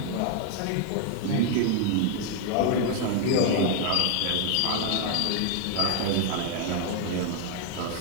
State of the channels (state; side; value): different; both; correlation 0.00